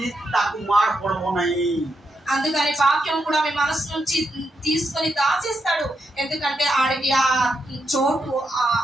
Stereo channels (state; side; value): normal; both; correlation 0.83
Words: ताकु मार पड़बो नहीं అందుకని వాక్యం కూడా మీ మనసు నుంచి తీసుకొని దాచేస్తాడు ఎందుకంటే ఆడికి ఆ చోటు